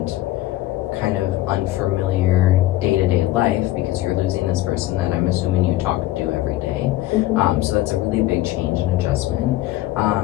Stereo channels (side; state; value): right; quieter; 16.0 dB